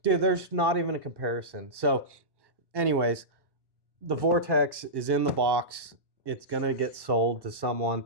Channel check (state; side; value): late; left; 1.1 ms